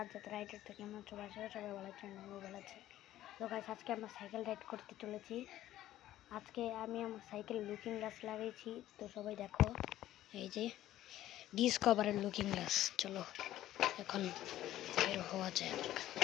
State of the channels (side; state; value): right; quieter; 13.7 dB